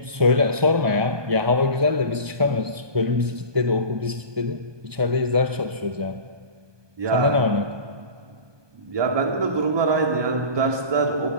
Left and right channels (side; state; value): left; late; 1.2 ms